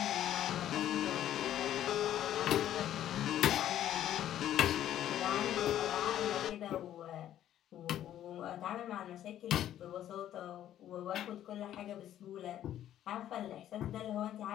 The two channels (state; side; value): quieter; right; 11.7 dB